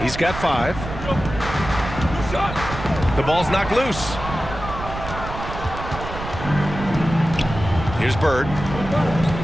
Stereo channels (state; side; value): noise; right; rumble, 9 dB below the sound